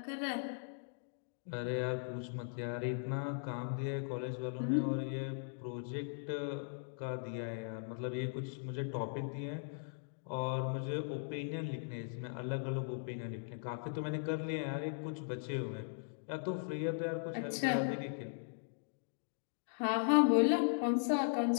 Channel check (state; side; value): silent; right; digital silence